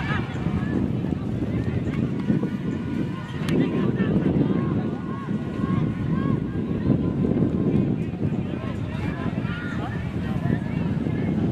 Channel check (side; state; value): both; identical; correlation 1.00